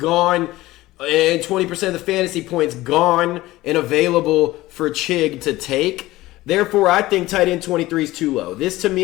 and 20% of the fantasy points gone and available for Chig to take. Therefore, I think tight end 23 is too low. This, to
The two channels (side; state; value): right; quieter; 17.7 dB